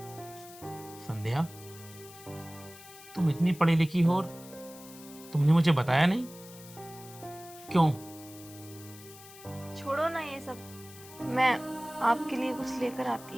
संध्या, तुम इतनी पढ़ी लिखी हो और तुमने मुझे बताया नहीं क्यों? छोड़ो ना ये सब, मैं आपके लिए कुछ लेकर आती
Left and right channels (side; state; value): left; noise; hiss, 18 dB below the sound